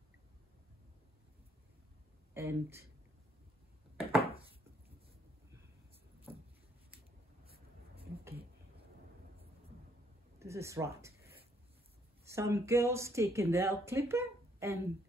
and okay, this is right. Some girls take a nail clipper, and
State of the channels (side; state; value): both; normal; correlation 0.69